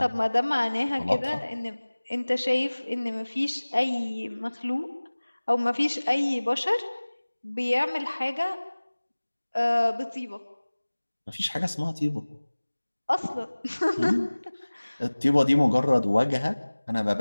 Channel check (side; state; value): both; inverted; correlation -1.00